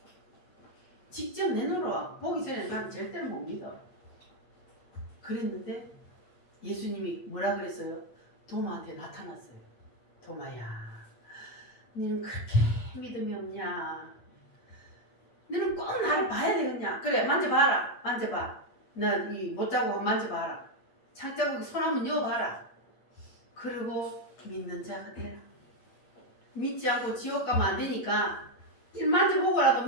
직접 내 눈으로 보기 전에 나는 절대로 못 믿어. 그랬는데 예수님이 뭐라 그랬어요? 도마한테 나타났어요. 도마야, 너는 그렇게 믿음이 없냐? 너는 꼭 나를 봐야 되겠냐? 그래, 만져봐라. 만져봐. 나 이 못자국 만져봐라. 창자국에 손 한번 여봐라. 그리고 믿는 자가 되라. 믿지 않고 지옥 가면 안 되니까 만져보고라도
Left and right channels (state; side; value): late; right; 8.6 ms